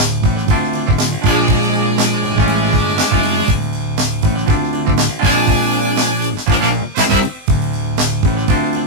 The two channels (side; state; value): left; late; 20 ms